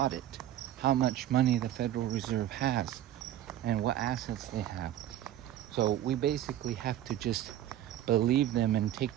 how much money the Federal Reserve has and what assets they have. So we basically have to just believe them and take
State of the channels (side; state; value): left; quieter; 12.1 dB